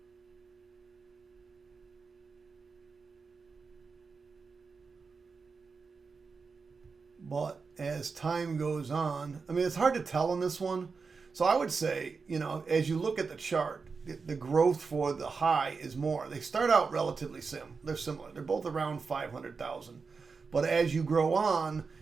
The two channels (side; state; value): left; quieter; 4.9 dB